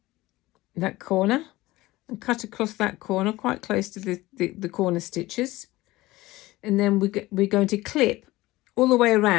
that corner, and cut across that corner quite close to the corner stitches. And then we're going to clip all the way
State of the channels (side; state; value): right; quieter; 18.7 dB